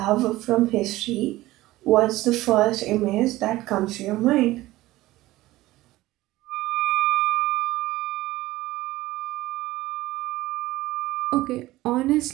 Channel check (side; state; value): left; quieter; 17.3 dB